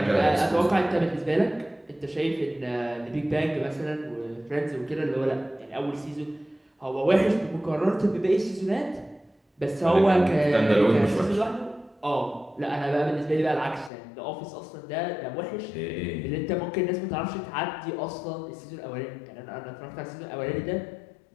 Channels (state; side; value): drops out; right; at 13.9 s